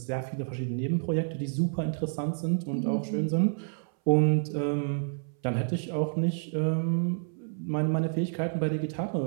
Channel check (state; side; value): silent; left; 59 dB below the other